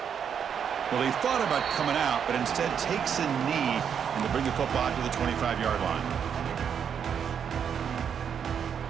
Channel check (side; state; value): left; quieter; 7.7 dB